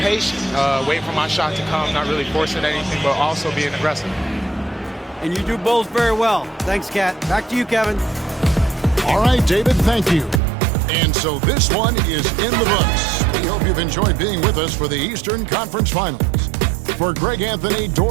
waiting for my shot to come, not really forcing anything, but also being aggressive. And you do both very well. Thanks, Kat. Back to you, Kevin. All right, David, thank you. And so this one is in the books. We hope you've enjoyed being with us for the Eastern Conference Finals. For Greg Anthony,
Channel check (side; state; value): left; drops out; at 10.4 s